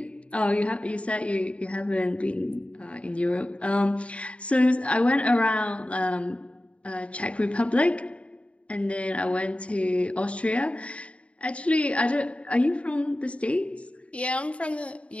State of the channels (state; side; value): late; right; 0.062 ms